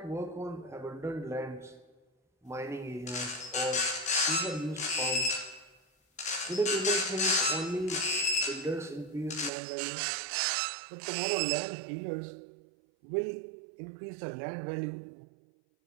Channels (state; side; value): drops out; left; at 9.5 s